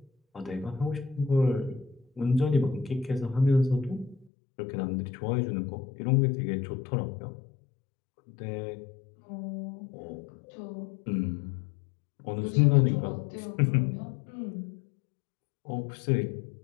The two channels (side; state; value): right; drops out; at 4.2 s